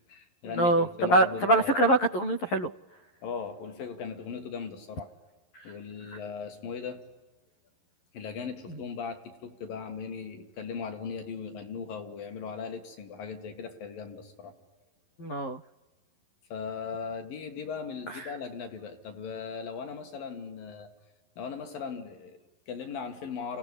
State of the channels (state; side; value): late; right; 11 ms